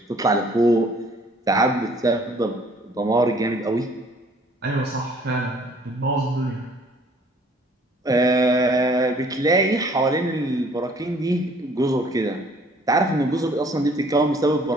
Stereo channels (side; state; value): both; normal; correlation 0.57